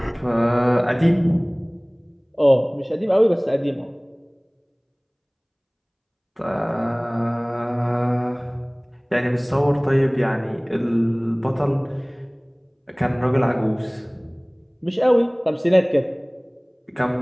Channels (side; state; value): both; identical; correlation 1.00